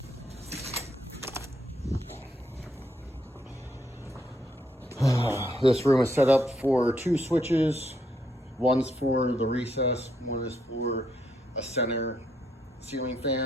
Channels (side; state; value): both; normal; correlation 0.75